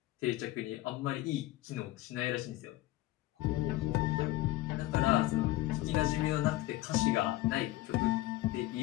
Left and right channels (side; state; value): right; quieter; 17.0 dB